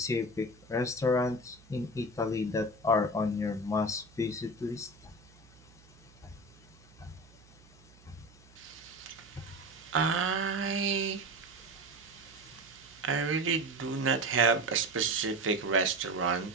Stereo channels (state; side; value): noise; right; hum, 25 dB below the sound